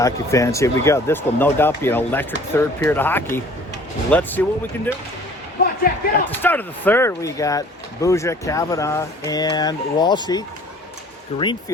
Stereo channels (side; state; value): both; normal; correlation 0.51